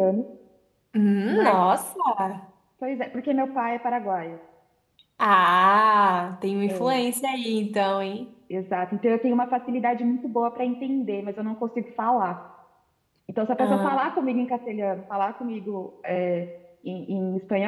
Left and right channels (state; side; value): identical; both; correlation 1.00